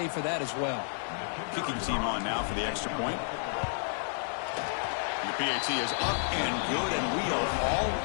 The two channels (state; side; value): silent; right; digital silence